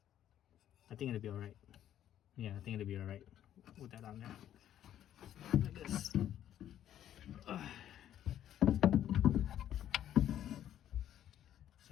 I think it'll be alright. Yeah, I think it'll be alright. Put that on there. Like this.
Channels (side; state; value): right; quieter; 11.1 dB